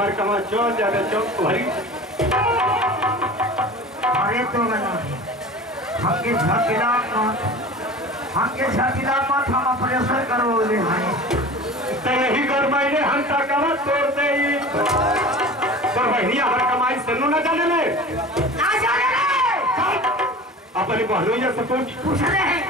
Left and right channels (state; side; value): normal; both; correlation 0.37